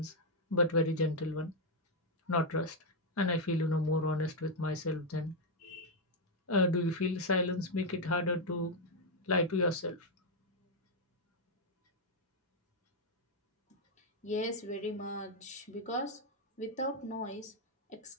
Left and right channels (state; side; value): normal; both; correlation 0.00